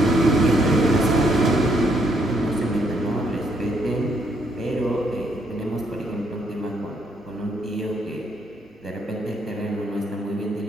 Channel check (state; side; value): normal; both; correlation 0.71